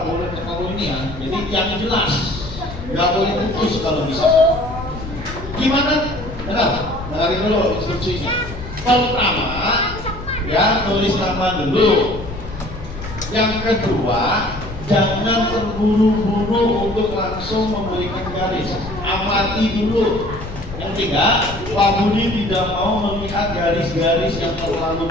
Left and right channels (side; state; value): left; noise; rumble, 11 dB below the sound